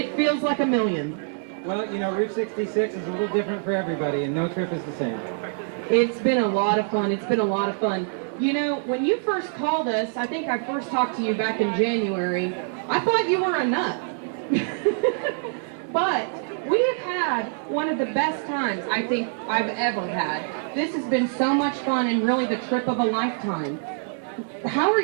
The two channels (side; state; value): left; silent; 62 dB below the other